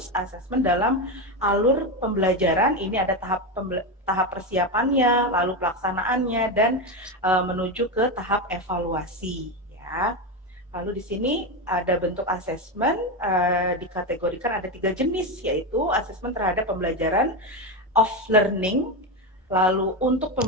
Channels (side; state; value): both; normal; correlation 0.13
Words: asesmen dalam alur pembelajaran. Ini ada tahap persiapannya, lalu pelaksanaannya, dan menuju ke tahap evaluasi. Ya. Lalu di sini ada bentuk asesmen, dikategorikan ada 3 jenis, yaitu asesmen terhadap pembelajaran of learning, lalu untuk